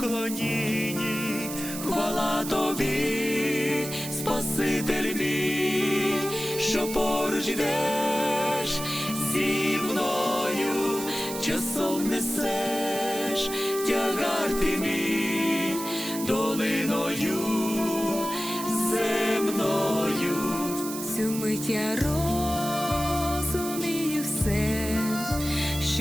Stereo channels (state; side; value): noise; right; hiss, 8 dB below the sound